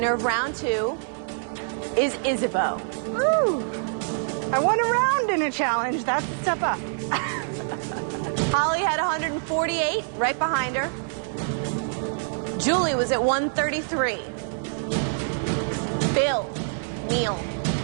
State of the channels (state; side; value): silent; left; digital silence